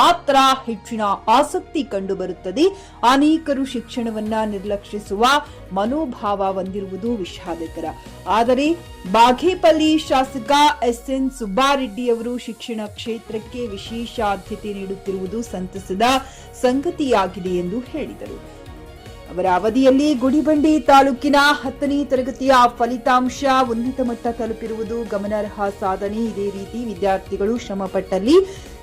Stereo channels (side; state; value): both; identical; correlation 1.00